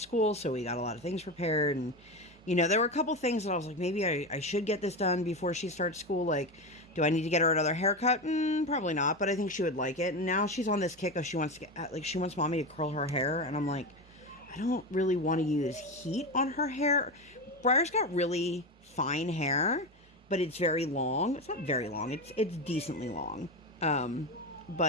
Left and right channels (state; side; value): normal; both; correlation 0.18